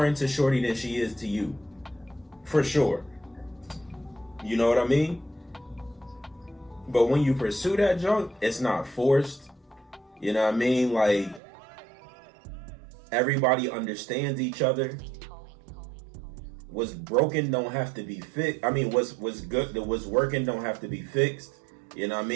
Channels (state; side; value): drops out; left; at 11.4 s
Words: into shorty than she is to you, for sure. You know what I mean? But when you pursue that junk, it's not forced. You know what I mean? Like, everybody understands each other. What's broken don't have to be fixed. I mean, what's good, what's working don't have to be fixed. You know what I